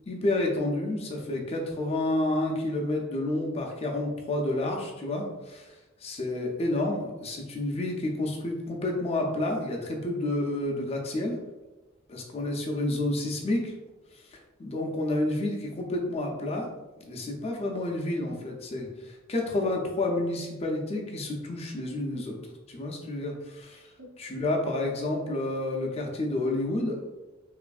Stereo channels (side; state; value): both; normal; correlation 0.52